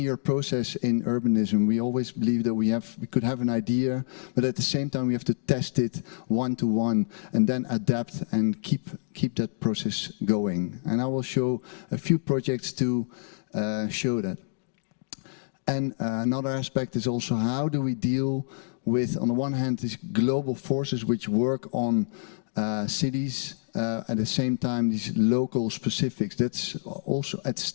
process in urbanism. We always believe that we could have an idea, but at the same time we have to test it one-to-one and then adapt and keep that process going. And I will show a few projects to show that. And another aspect is also how do we deal with, on the one hand, these global forces which work on cities, at the same time these local specifics. That's also at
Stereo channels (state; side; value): silent; right; digital silence